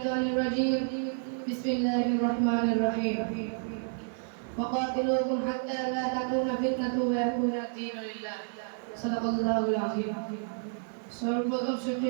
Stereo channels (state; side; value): silent; left; digital silence